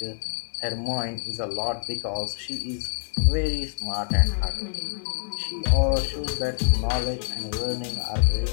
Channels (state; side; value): silent; right; 61 dB below the other